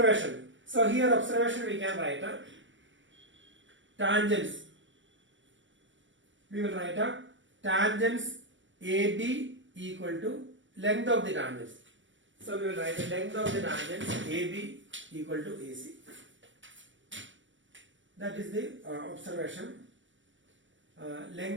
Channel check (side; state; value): left; late; 0.55 ms